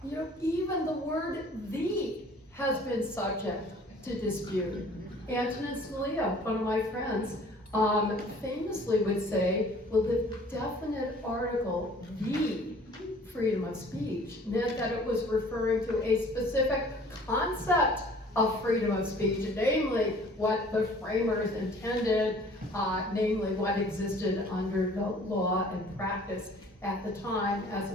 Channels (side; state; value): both; normal; correlation 0.52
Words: You know, even the word "the" has been subject to dispute. Antonin Scalia, one of my friends, famously would say, well, the definite article, "the" freedom of speech, meant that it was referring to a specific concept of freedom of speech, namely what the framers intended, namely what existed under the law and practice at the time, as